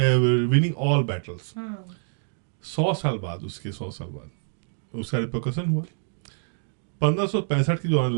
winning all battles. 100 साल बाद उसका रिपरकशन हुआ। 1565 की जो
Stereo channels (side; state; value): left; silent; digital silence